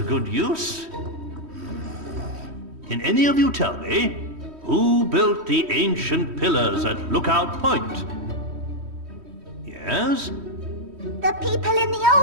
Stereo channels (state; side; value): late; left; 3.1 ms